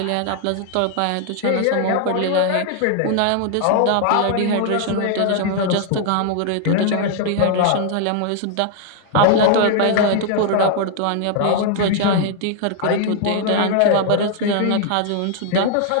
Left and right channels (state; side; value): different; both; correlation 0.00